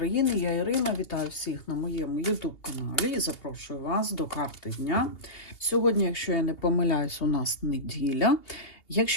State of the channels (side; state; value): right; late; 2.8 ms